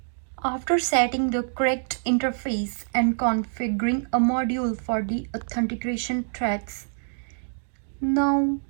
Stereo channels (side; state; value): left; silent; digital silence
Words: After setting the correct interface and configuring a module for the authentication threads, now